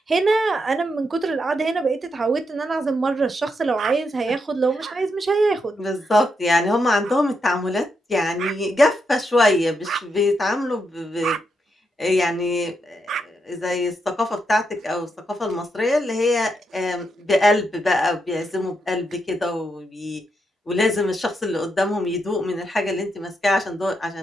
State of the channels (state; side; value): normal; both; correlation 0.82